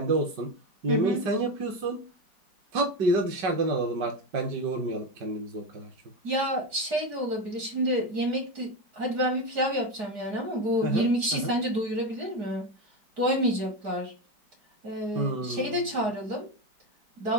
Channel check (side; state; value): left; late; 4.8 ms